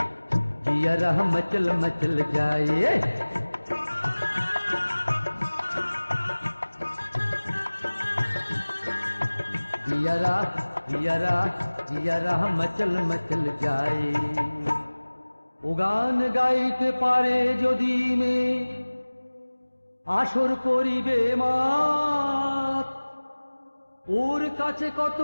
জিয়ারা মচল মচল যায়। জিয়ারা জিয়ারা জিয়ারা মচল মচল যায়। ও গান গাইতে পারে যদি মেয়ে, আসর করিবে মাত, ওর কাছে কত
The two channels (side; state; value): both; inverted; correlation -1.00